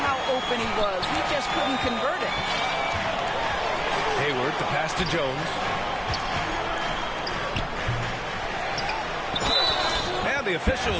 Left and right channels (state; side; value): identical; both; correlation 1.00